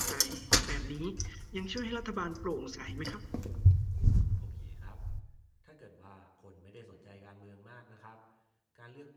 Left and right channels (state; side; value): identical; both; correlation 1.00